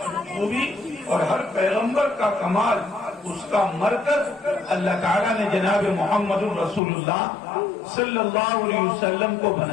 خوبی اور ہر پیغمبر کا کمال، اس کا مرکز اللہ تعالیٰ نے جناب محمد الرسول اللہ صلی اللہ علیہ وسلم کو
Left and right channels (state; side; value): drops out; right; at 6.8 s